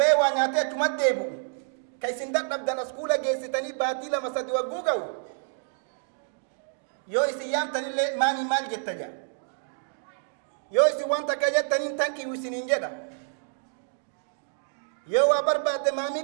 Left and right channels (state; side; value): silent; left; digital silence